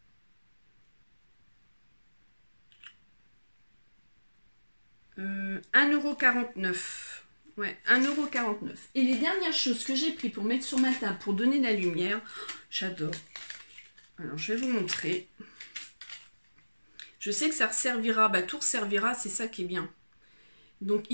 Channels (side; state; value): both; inverted; correlation -1.00